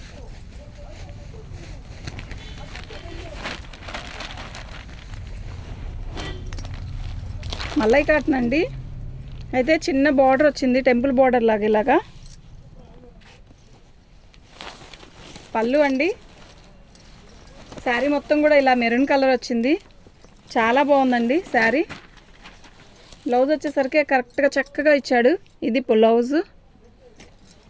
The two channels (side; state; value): both; identical; correlation 1.00